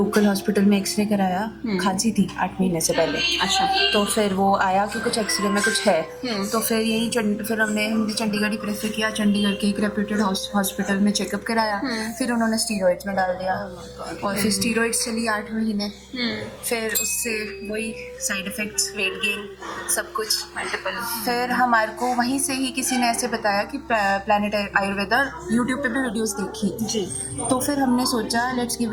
हॉस्पिटल में एक्सरे कराया, खांसी थी 8 महीने से पहले। अच्छा। तो फिर वो आया कि कुछ एक्सरे में कुछ है। तो फिर यही फिर हमने चंडीगढ़ ही प्रेफर किया। चंडीगढ़ के एक रेप्यूटेड हॉस्पिटल में चेकअप कराया। फिर उन्होंने स्टीरॉइड्स में डाल दिया और फिर स्टीरॉइड्स चली 8 महीने। फिर उससे वही साइड इफेक्ट्स, वेट गेन, सब कुछ मल्टीपल। फिर हमारे को वहीं से ही किसी ने ऐसे बताया कि प्लैनेट आयुर्वेदा, यूट्यूब पे भी वीडियोस देखी जी। तो फिर हमने सोचा let's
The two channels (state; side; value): identical; both; correlation 1.00